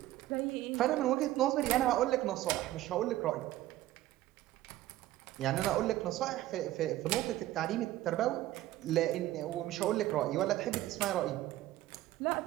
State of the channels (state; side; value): quieter; left; 15.0 dB